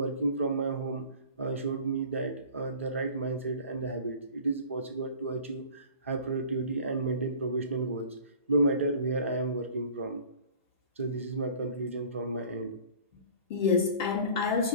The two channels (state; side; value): inverted; both; correlation -0.45